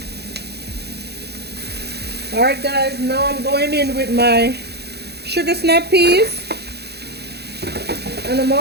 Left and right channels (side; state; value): left; late; 0.48 ms